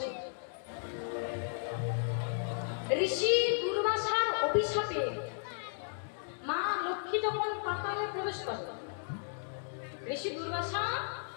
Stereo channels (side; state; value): right; silent; digital silence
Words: ঋষি দুর্বাসার অভিশাপে মা লক্ষ্মী যখন পাতালে প্রবেশ করে, ঋষি দুর্বাসা